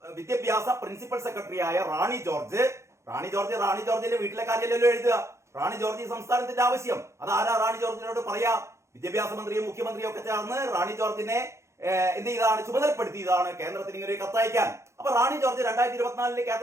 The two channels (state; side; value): late; left; 0.14 ms